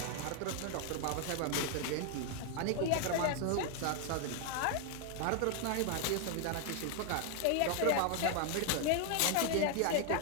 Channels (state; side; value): different; both; correlation 0.00